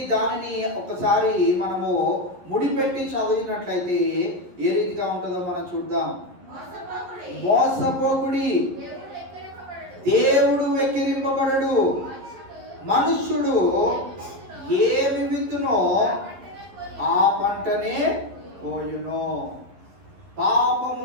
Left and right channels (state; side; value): late; left; 11 ms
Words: దానిని ఒకసారి మనము ముడిపెట్టి చదివినట్లయితే ఏ రీతిగా ఉంటుందో మనం చూద్దాం. మోసపోకుడి, దేవుడు వెక్కిరింపబడడు. మనుష్యుడు ఏమి విత్తునో ఆ పంటనే పోయును.